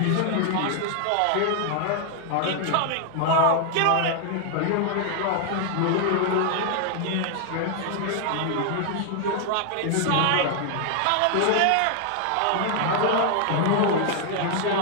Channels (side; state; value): both; different; correlation 0.00